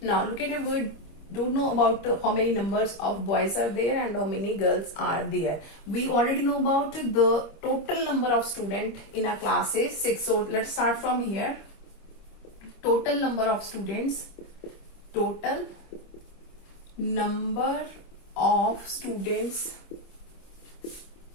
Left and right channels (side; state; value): right; late; 25 ms